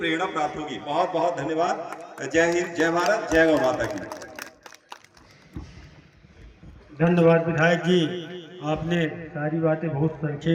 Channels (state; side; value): identical; both; correlation 1.00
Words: प्राप्त होगी। बहुत बहुत धन्यवाद। जय हिंद, जय भारत, जय गौ माता की। धन्यवाद विधायक जी, आपने सारी बातें बहुत